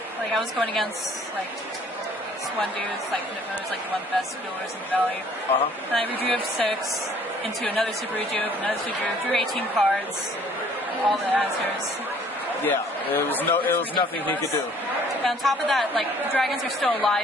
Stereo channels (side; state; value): both; normal; correlation 0.57